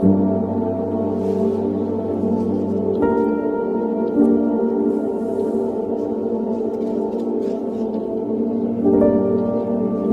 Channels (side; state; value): both; identical; correlation 1.00